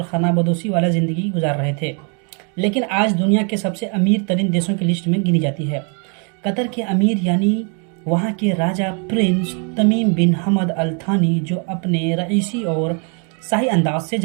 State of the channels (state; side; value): quieter; left; 37.7 dB